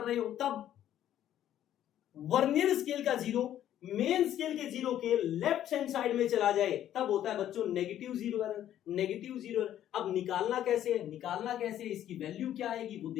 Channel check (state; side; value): quieter; right; 11.5 dB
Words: हो, तब वर्नियर स्केल का जीरो मेन स्केल के जीरो के लेफ्ट हैंड साइड में चला जाए, तब होता है बच्चों नेगेटिव जीरो एरर। अब निकालना कैसे है? इसकी वैल्यू क्या आएगी वो